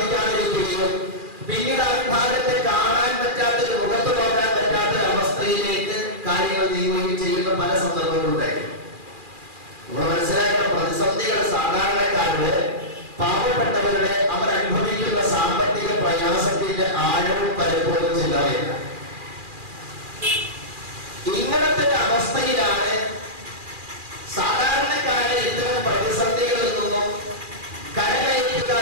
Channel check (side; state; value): left; late; 2.4 ms